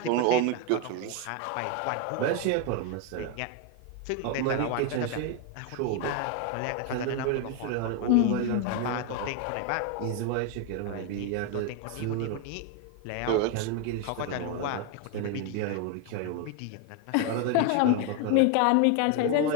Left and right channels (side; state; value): both; different; correlation 0.01